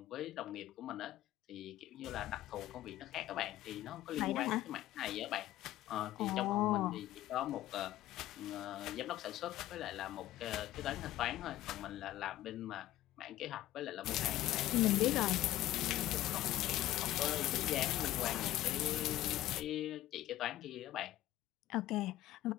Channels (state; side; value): quieter; right; 14.7 dB